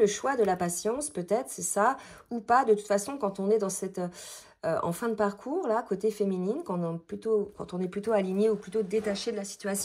choix de la patience, peut-être, c'est ça, ou pas. De toute façon, quand on est dans cette... en fin de parcours, là, côté féminine, quand on est plutôt aligné ou plutôt détaché de la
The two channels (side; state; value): both; identical; correlation 1.00